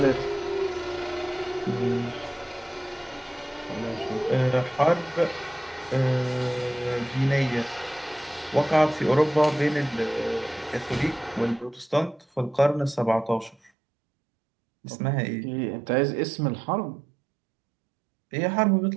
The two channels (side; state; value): left; drops out; at 13.7 s